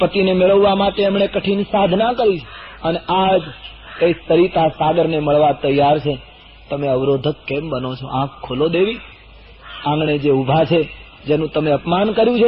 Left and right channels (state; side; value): identical; both; correlation 1.00